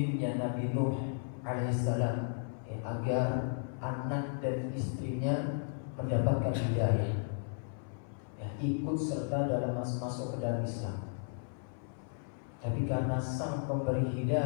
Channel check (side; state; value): right; silent; 55 dB below the other